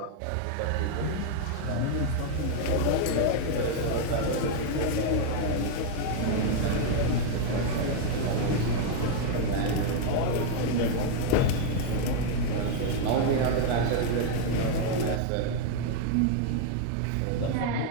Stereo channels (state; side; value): different; both; correlation 0.00